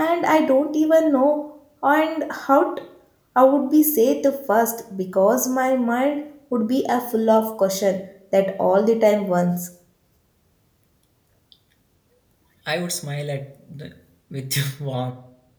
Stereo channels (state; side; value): identical; both; correlation 1.00